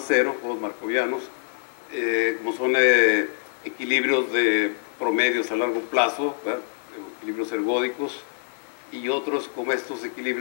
cero, juegos markovianos, como son equilibrios de promedios a largo plazo, ¿verdad? Equilibrios ergódicos, y otros como estos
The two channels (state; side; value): silent; right; digital silence